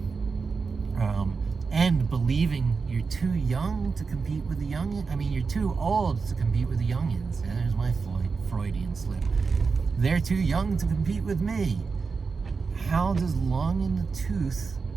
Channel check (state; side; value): quieter; left; 4.9 dB